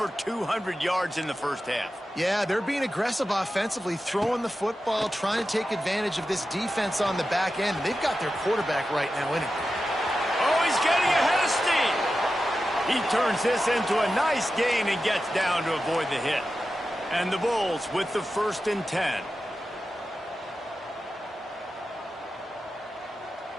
200 yards in the first half. Yeah, they're being aggressive offensively, throwing the football, trying to take advantage of this defense on the back end. They've got their quarterback right now in it. Oh, he's getting ahead of steam. He turns this into a nice gain and gets down to avoid the hit. And the Bulls with the 1st and 10.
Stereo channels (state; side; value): normal; both; correlation 0.92